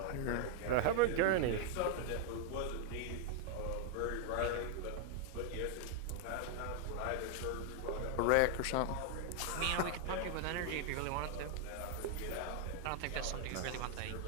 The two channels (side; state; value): both; different; correlation 0.00